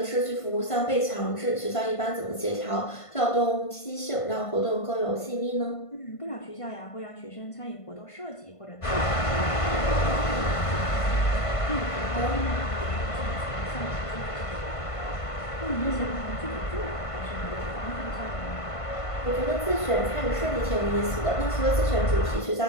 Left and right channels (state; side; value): late; right; 1.5 ms